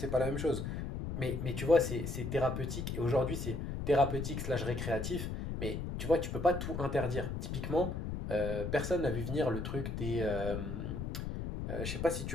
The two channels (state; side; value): noise; left; rumble, 4 dB below the sound